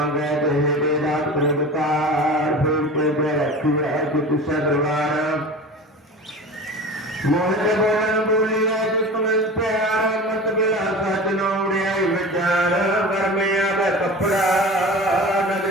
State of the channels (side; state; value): both; normal; correlation 0.34